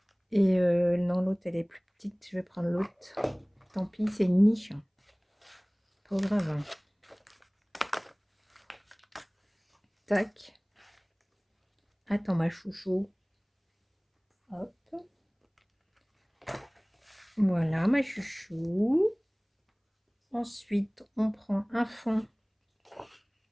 Et non, l'autre, elle est plus petite. Je vais prendre l'autre. Tant pis, c'est une niche. Pas grave. Hein. Tac. Attends, ma chouchou. Hop. Voilà, ma chouchou. Ensuite, on prend un fond.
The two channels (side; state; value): both; identical; correlation 1.00